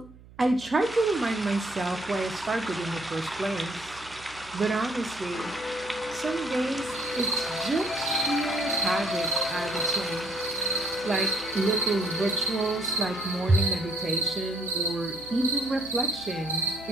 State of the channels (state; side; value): noise; right; hum, 21 dB below the sound